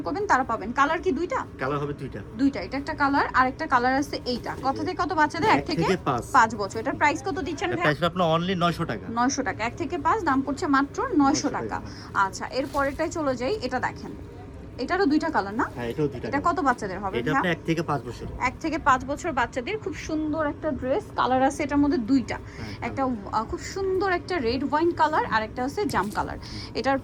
করবেন তারা পাবেন। কালার কি দুইটা? কালার হবে দুইটা। এটা একটা কালার আর একটা কালার আছে এইটা। কত থেকে কত বাচ্চাদের? 1 থেকে 5 বছর। এটার প্রাইস কত দিচ্ছেন ভাই? প্রাইস আপনার অনলি 900 টাকা। 900 টাকা। 1 থেকে 5 দাম পড়ছে মাত্র 900 টাকা। আচ্ছা, এর পরেরটাই চলে যাই। এটা দেখেন, এটারও দুইটা কালার না? হ্যাঁ, এটাও দুইটা। এটা কত বাচ্চাদের হবে? এটা আপনার 1 থেকে 5 বছর। 1 থেকে 5 বছর বাচ্চাদের খুব সুন্দর একটা ড্রেস। কালার আছে এটার মধ্যে দুইটা। একটা খুব সুন্দর একটা রেড ওয়াইন কালার আর একটা আছে জাম কালার। এটার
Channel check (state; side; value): identical; both; correlation 1.00